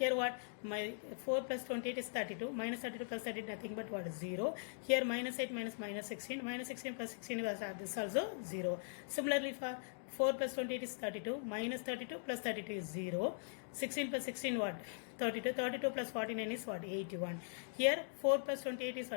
what? My 4 plus 28 is 32. Minus 32 plus 30 nothing but what? 0. Here minus 8 minus minus 16. Minus 16 plus 16 was this also 0. Similarly for 4 plus 28 is 32. Minus 32 plus 32 is 0. 16 plus 16 what? 32. 32 plus 49 is what? 81. Here 4 plus 28 is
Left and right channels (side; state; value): right; silent; digital silence